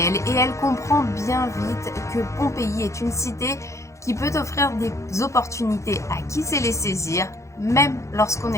et elle comprend bien vite que Pompéi est une cité qui peut offrir des opportunités à qui sait les saisir, même lorsqu'on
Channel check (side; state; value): right; late; 0.14 ms